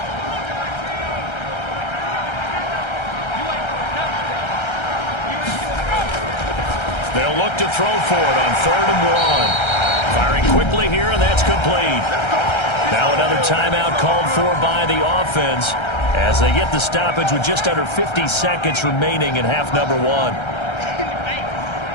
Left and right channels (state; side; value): late; right; 1.3 ms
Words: They'll look to throw for it on 3rd and 1. Firing quickly here, and that's complete. Now another timeout called for by the offense as they get the stoppage with just under 50 seconds remaining in half number 1.